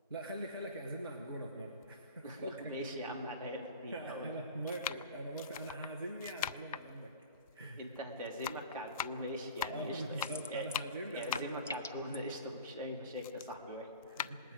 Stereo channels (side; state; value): both; inverted; correlation -0.37